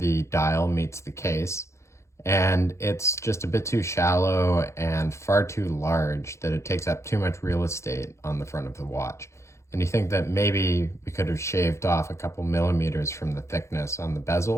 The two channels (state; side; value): late; right; 0.14 ms